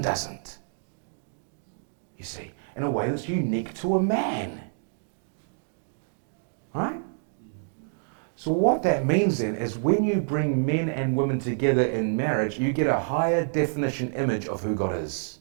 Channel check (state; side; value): silent; left; digital silence